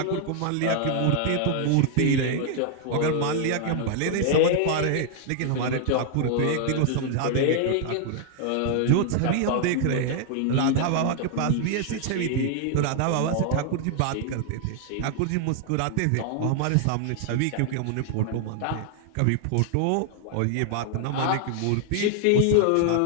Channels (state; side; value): different; both; correlation 0.00